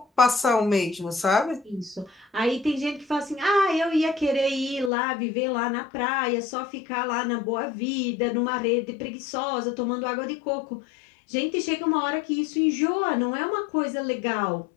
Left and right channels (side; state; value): right; drops out; at 4.9 s